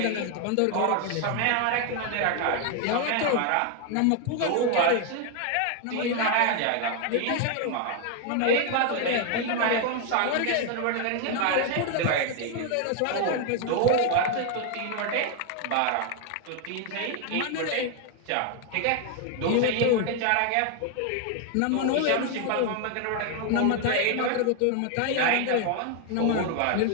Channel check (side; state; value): both; different; correlation 0.01